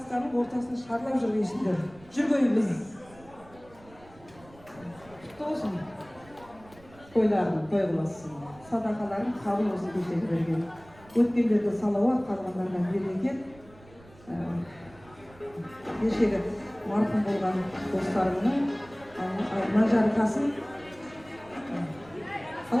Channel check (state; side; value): noise; right; rumble, 24 dB below the sound